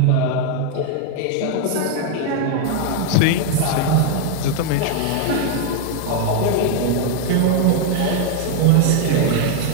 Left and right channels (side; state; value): both; different; correlation 0.00